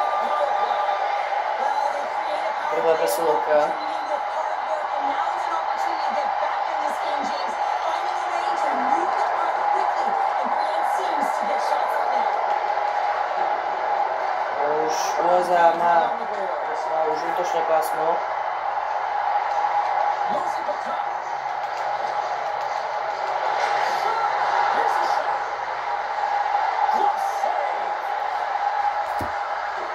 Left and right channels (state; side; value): identical; both; correlation 1.00